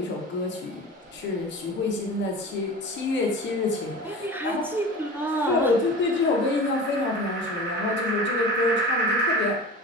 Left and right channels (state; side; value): normal; both; correlation 0.35